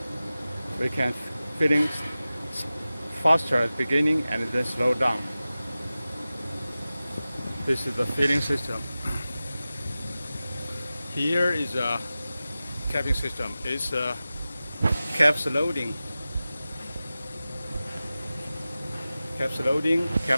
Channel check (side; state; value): both; inverted; correlation -0.96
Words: We can filling faster at the beginning and then slow down. This is the filling system. Here is a capping system. It's a caps loading,